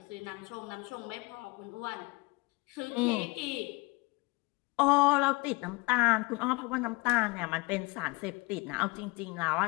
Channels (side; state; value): right; quieter; 25.5 dB